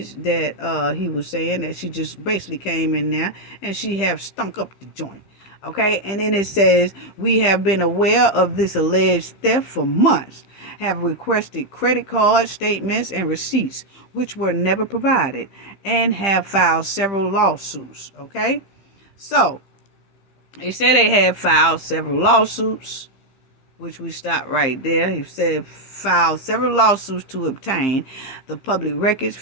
that he was saying that she just basically came in there and she have stunk up the joint. Okay, and then it says, we have been aware of this alleged theft for months, have requested credit card statements and receipts, which were never provided, and have filed several lawsuits. Okay, so they said they had filed several lawsuits, which we stopped right there. He said filed several lawsuits to obtain the public records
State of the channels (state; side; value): late; right; 15 ms